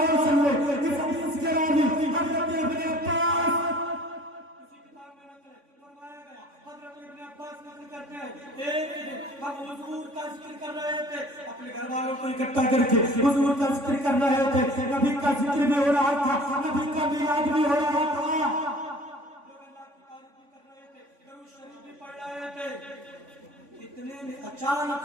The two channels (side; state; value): left; late; 3.5 ms